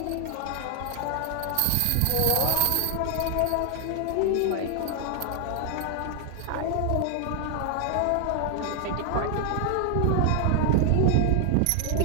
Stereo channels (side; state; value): both; different; correlation 0.00